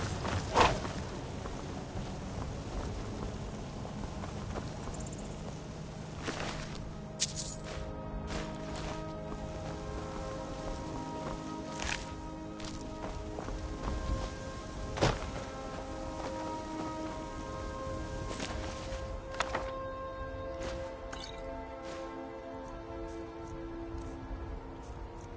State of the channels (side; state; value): both; identical; correlation 1.00